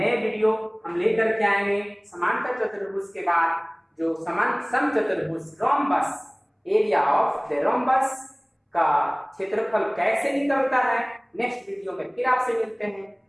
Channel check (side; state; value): both; identical; correlation 1.00